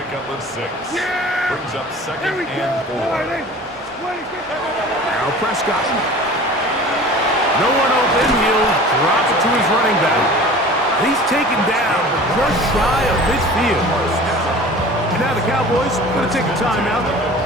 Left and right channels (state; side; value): normal; both; correlation 0.41